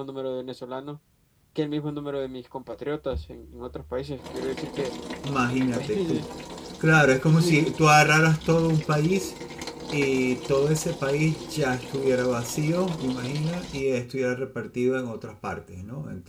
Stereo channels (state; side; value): identical; both; correlation 1.00